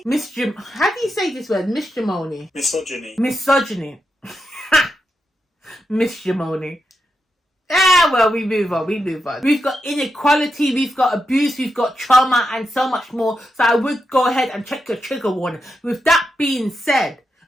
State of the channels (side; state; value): both; normal; correlation 0.86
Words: How do you say this word? Misogyny. Misogyny. Missimony. Well, we move on. We've got inequality, we've got abuse, we've got trauma, and so much more. So I would go ahead and check your trigger warning. With that being said,